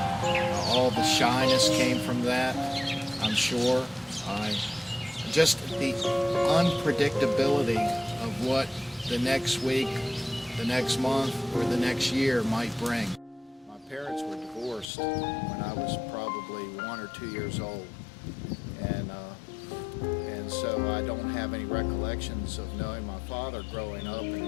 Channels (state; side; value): drops out; right; at 14.9 s